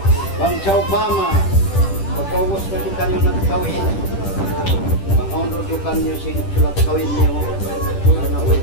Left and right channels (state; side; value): late; right; 10 ms